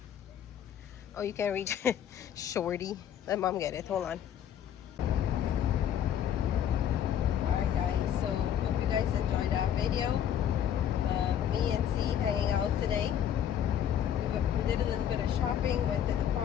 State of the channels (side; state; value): right; quieter; 9.6 dB